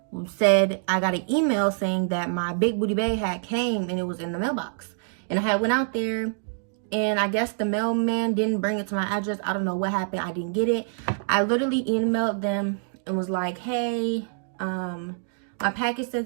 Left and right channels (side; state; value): left; silent; digital silence